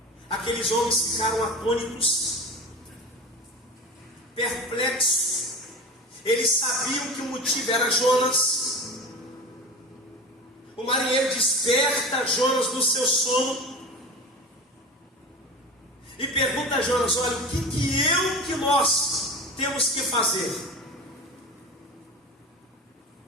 Aqueles homens ficaram atônitos, perplexos. Eles sabiam que o motivo era Jonas. O marinheiro desperta Jonas do seu sono e pergunta a Jonas: olha, o que nós temos que fazer?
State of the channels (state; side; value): normal; both; correlation 0.31